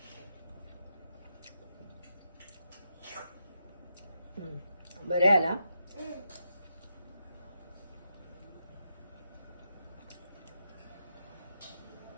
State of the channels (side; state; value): both; inverted; correlation -0.84